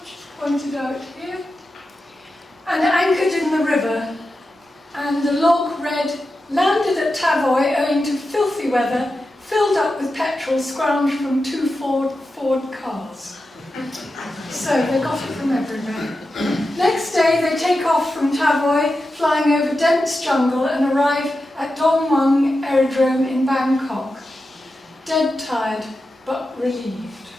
pointed out here, and anchored in the river. And the log read, "Landed at Tavoy owing to filthy weather, filled up with petrol scrounged from 2 Ford cars." So they got it from everywhere. Next day they take off from Tavoy, flying over dense jungle, and arrive at Dong Mueang Aerodrome in Bangkok. Dead tired, but relieved.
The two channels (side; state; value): both; normal; correlation 0.91